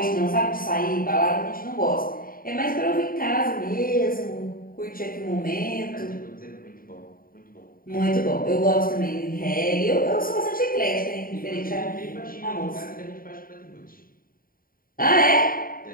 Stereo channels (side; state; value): right; late; 0.42 ms